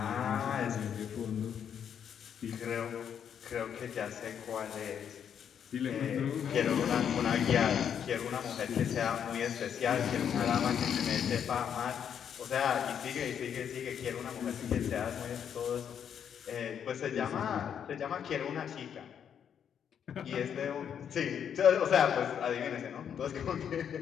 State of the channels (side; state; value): right; quieter; 8.3 dB